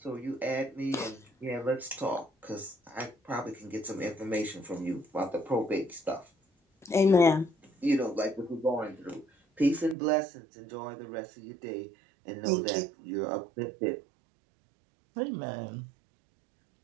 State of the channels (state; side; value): drops out; left; at 10.0 s